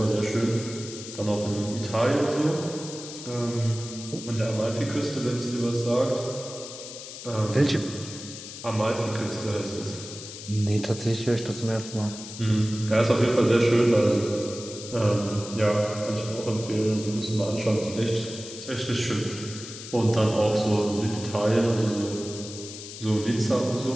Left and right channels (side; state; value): left; noise; hiss, 12 dB below the sound